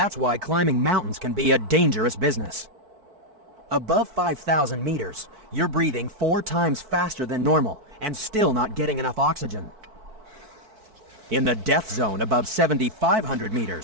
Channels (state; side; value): late; left; 4.5 ms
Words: why climbing mountains can be a dangerous business. Above 5,000 meters, you're breathing 4 times faster than normal and still not getting enough oxygen. In the death zone above 7,500